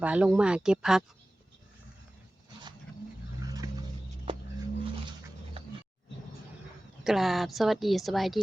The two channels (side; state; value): both; normal; correlation 0.97